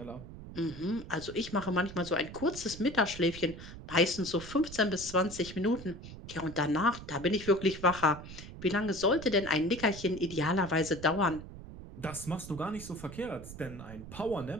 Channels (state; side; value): noise; right; rumble, 13 dB below the sound